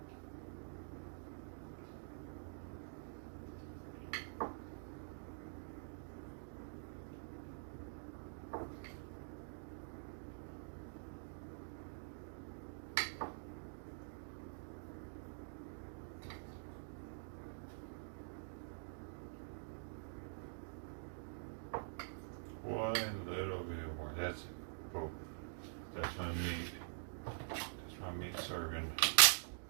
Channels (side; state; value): left; silent; digital silence